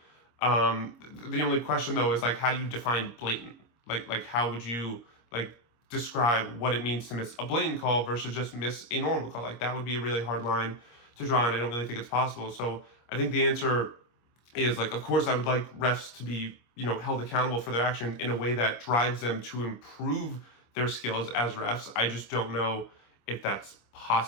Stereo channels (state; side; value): late; right; 25 ms